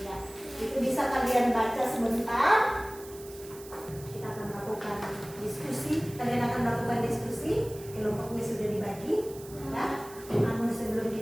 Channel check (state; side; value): noise; right; hiss, 18 dB below the sound